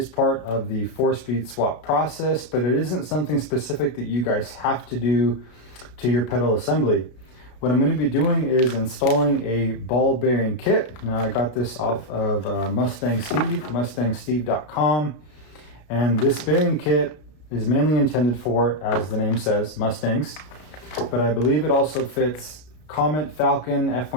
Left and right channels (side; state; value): right; late; 33 ms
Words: part of the 4-speed swap process, but it isn't something specific that you guys have to do to your pedal assembly. What I'm going to be doing is installing a ball bearing kit. Now I got this off of MustangSteve, MustangSteve.com, and this bearing kit is mainly intended for, as the name says, Mustangs, but I believe it also fits Comet, Falcon,